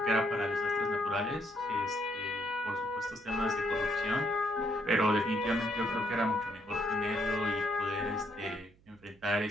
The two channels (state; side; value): noise; right; hum, 29 dB below the sound